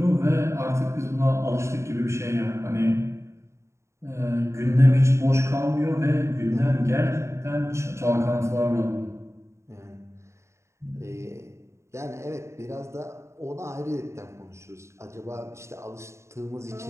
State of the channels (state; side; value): late; left; 0.14 ms